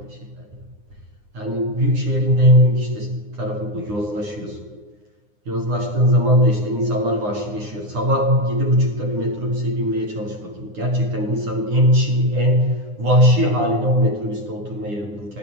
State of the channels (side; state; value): left; late; 9.7 ms